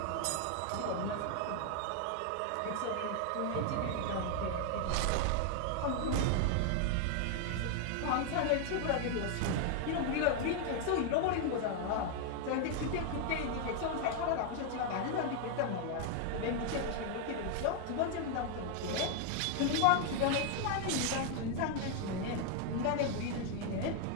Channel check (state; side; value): different; both; correlation 0.00